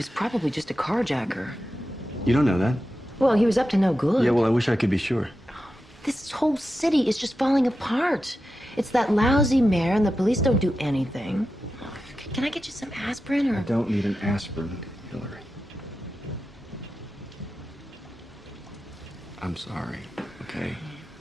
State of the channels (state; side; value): normal; both; correlation 0.91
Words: probably just a carjacker. You don't know that? Well, he was up to no good. Yeah, well, I wish I could be sure. This whole city is just falling apart. It's that lousy mayor, and the police don't do anything. Can I get you some aspirin, or? I don't need an aspirin, Hillary. I'm sorry, okay?